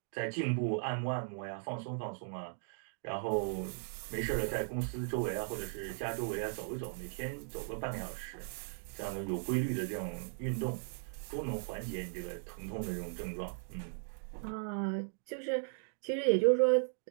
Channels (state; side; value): silent; left; digital silence